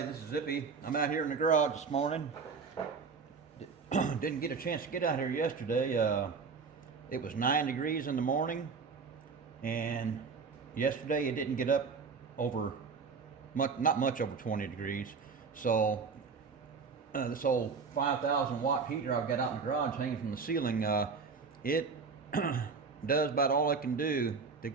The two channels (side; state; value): left; quieter; 5.1 dB